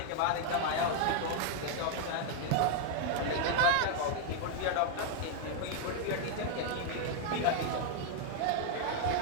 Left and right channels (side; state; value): both; different; correlation 0.00